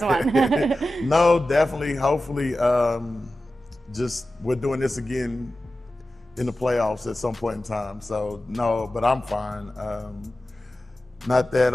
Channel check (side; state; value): both; normal; correlation 0.94